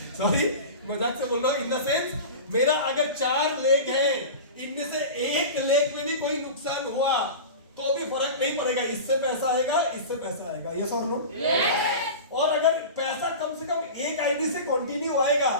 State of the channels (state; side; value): inverted; both; correlation -0.31